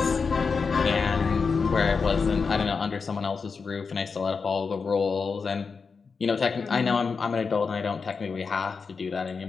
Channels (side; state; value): right; quieter; 5.1 dB